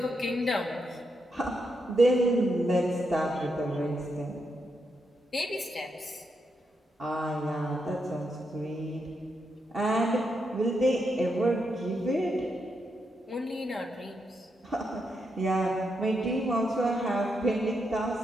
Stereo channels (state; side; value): normal; both; correlation 0.82